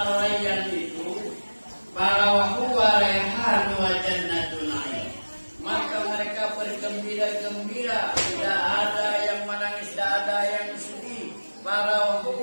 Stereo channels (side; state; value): both; inverted; correlation -1.00